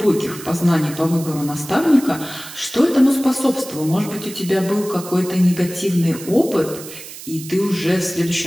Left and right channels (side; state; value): right; noise; hiss, 14 dB below the sound